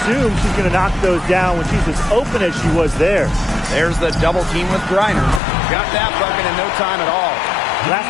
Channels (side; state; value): right; drops out; at 5.4 s